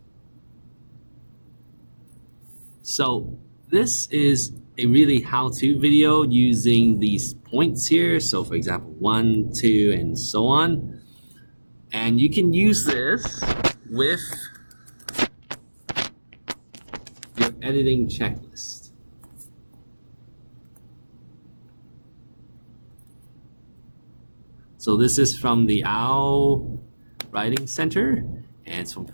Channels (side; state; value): both; inverted; correlation -1.00